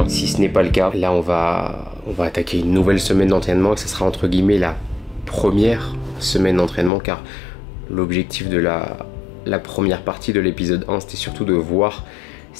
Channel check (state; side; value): drops out; right; at 6.9 s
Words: si ce n'est pas le cas. Là on va attaquer une nouvelle semaine d'entraînement et ce sera entre guillemets la première semaine d'entraînement car l'objectif de la première partie de l'épisode 1 c'était surtout de voir